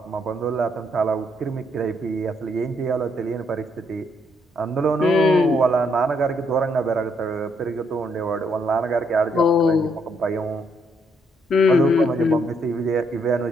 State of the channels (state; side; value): normal; both; correlation 0.73